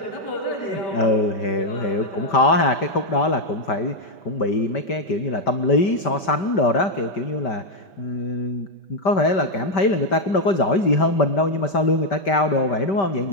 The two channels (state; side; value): late; right; 5.1 ms